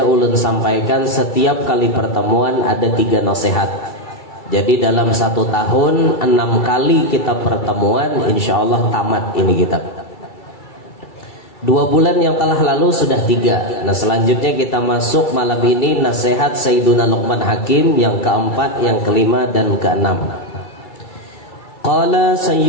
ulun sampaikan setiap kali pertemuan ada 3 nasihat. Jadi dalam 1 tahun 6 kali kita pertemuan, insya Allah tamat ini kitab. 2 bulan yang telah lalu sudah 3. Nah selanjutnya kita masuk malam ini nasihat Sayyiduna Luqman Hakim yang keempat, yang kelima dan keenam. Qala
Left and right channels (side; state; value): right; late; 2.7 ms